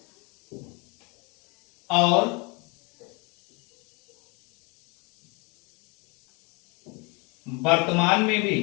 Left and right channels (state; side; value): quieter; right; 30.2 dB